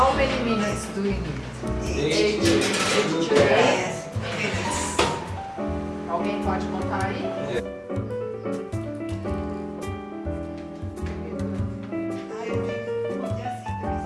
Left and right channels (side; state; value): both; identical; correlation 1.00